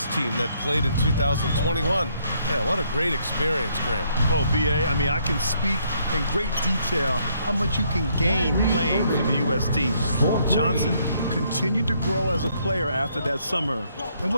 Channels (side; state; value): both; inverted; correlation -0.70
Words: team that played in 2021. Yeah, what a great experience, Grant. Oh, B.A., I mean, I can speak in great detail how much you can gain playing for the U.S. team. Johnson continued to grow as a player after that summer and